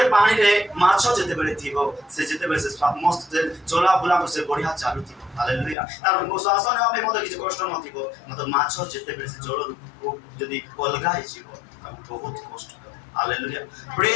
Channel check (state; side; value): drops out; right; at 5.8 s